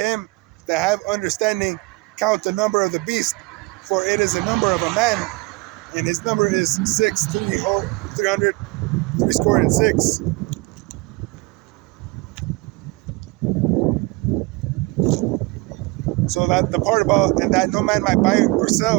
that have understanding count the number of the beast, for it is the number of a man, and his number is 300, 306. So that the part about and that no man might buy or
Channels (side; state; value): left; quieter; 24.4 dB